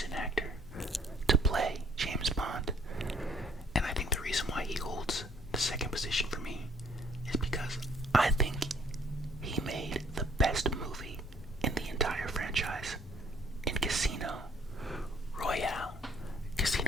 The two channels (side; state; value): both; normal; correlation 0.61